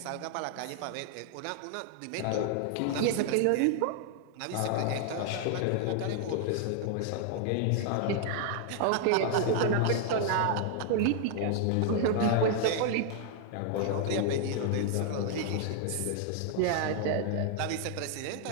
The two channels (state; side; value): different; both; correlation 0.00